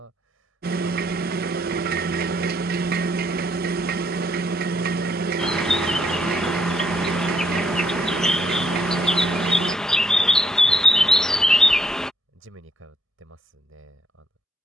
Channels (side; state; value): both; normal; correlation 0.70